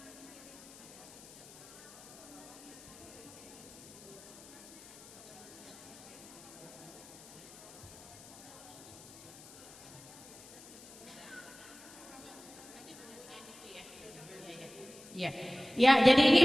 ya, jadi ini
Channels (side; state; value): left; noise; hiss, 18 dB below the sound